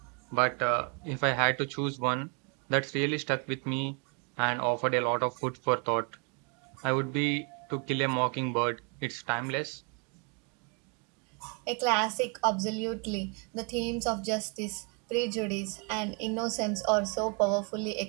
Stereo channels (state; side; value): quieter; left; 35.1 dB